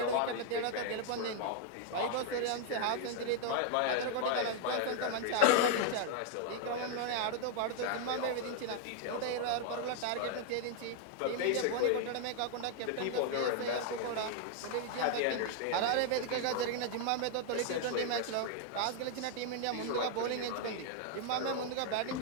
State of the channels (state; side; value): different; both; correlation 0.00